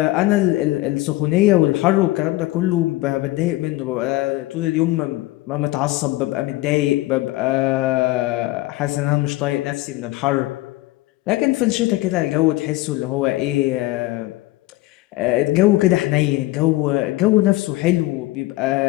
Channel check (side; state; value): right; quieter; 18.5 dB